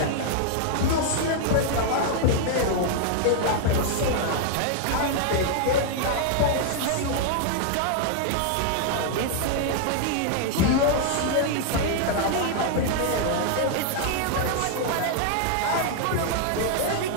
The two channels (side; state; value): both; different; correlation 0.00